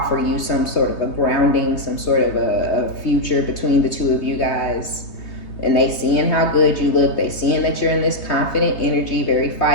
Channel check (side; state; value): right; late; 3.2 ms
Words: you some sort of a grounding, some sort of a future between the two of you guys. And they seeing how good you look. They seeing that you're in this confident energy, very